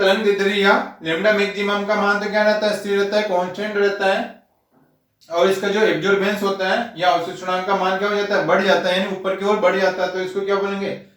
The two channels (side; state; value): both; identical; correlation 1.00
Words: दैर्ध्य या लैम्डा मैक्सिमम का मान तो क्या रहता है, स्थिर रहता है, कांस्टेंट रहता है, और इसका जो एब्जॉर्बेंस होता है या अवशोषणांक का मान क्या हो जाता है, बढ़ जाता है, यानी ऊपर की ओर बढ़ जाता है, तो इसको क्या बोलेंगे,